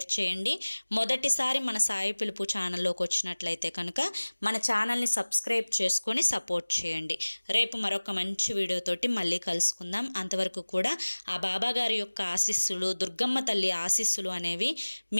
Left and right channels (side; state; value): both; inverted; correlation -1.00